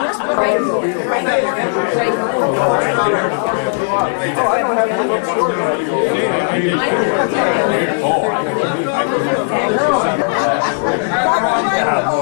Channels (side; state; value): right; silent; digital silence